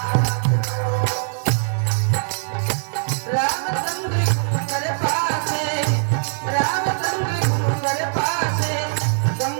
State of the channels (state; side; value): silent; left; 61 dB below the other